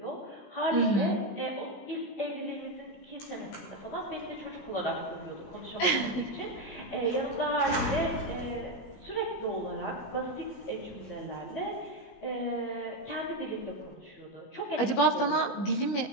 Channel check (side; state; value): right; late; 18 ms